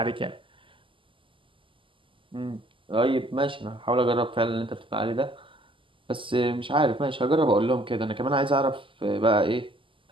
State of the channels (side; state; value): left; late; 0.25 ms